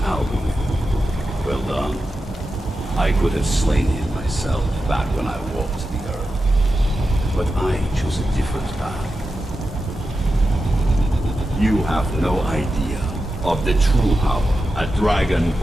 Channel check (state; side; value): normal; both; correlation 0.90